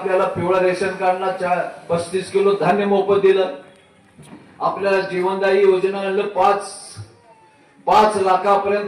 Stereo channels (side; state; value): both; identical; correlation 1.00